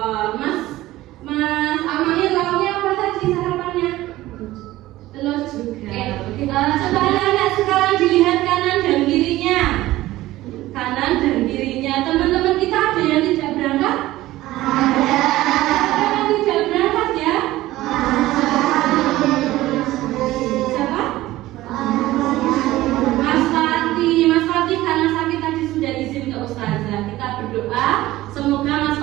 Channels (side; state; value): left; quieter; 16.5 dB